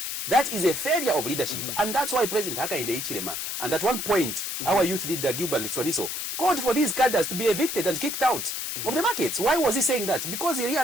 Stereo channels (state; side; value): noise; left; hiss, 4 dB below the sound